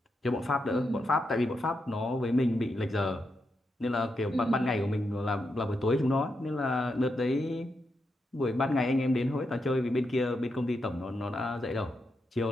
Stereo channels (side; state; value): both; normal; correlation 0.84